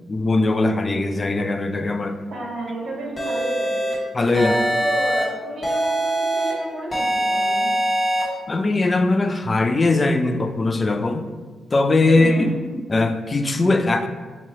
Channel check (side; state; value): both; normal; correlation 0.91